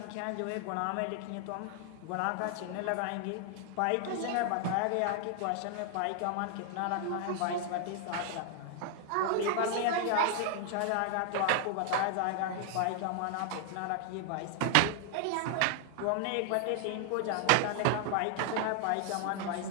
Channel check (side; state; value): both; different; correlation 0.00